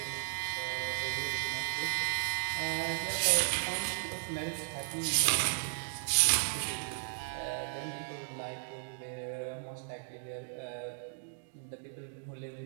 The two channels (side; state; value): left; silent; digital silence